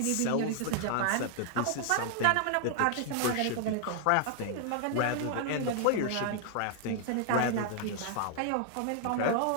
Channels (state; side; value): different; both; correlation 0.00